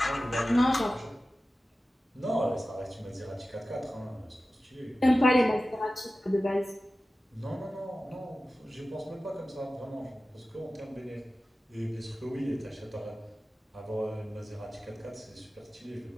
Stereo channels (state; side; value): normal; both; correlation 0.95